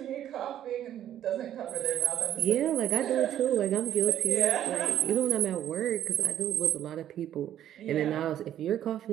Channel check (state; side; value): quieter; left; 11.2 dB